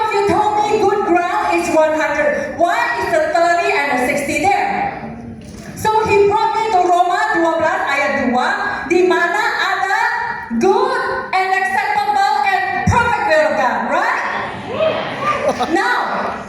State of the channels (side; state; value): both; identical; correlation 1.00